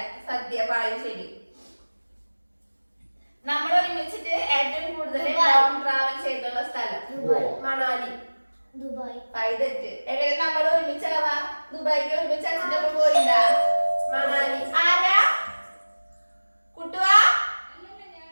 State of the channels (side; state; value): both; inverted; correlation -1.00